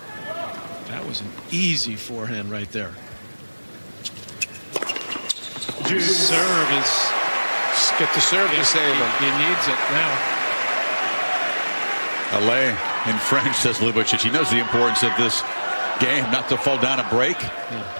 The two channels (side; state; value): both; inverted; correlation -1.00